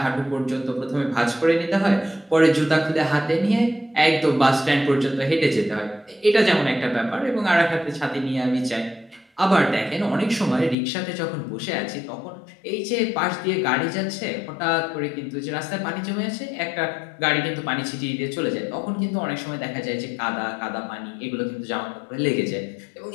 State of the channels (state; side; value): drops out; right; at 10.8 s